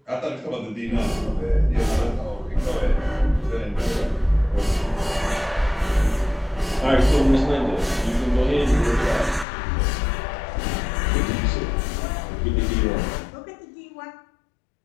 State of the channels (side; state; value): right; drops out; at 9.5 s